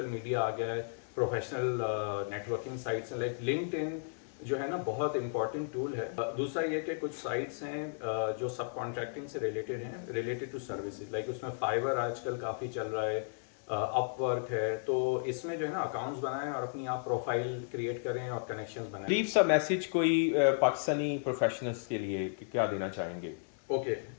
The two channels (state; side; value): silent; right; 55 dB below the other